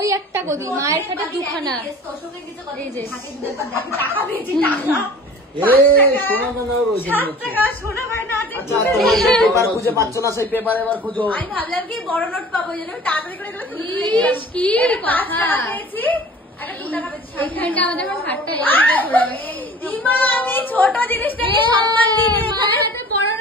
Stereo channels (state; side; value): normal; both; correlation 0.44